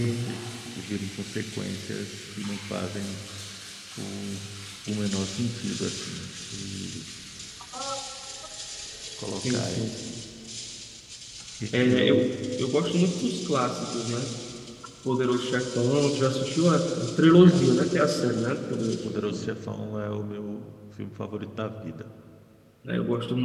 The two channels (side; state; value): both; identical; correlation 1.00